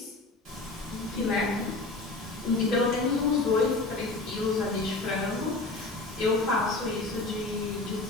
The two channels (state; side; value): quieter; right; 3.3 dB